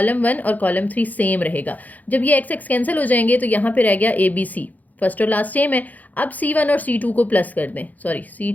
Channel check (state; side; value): late; right; 0.080 ms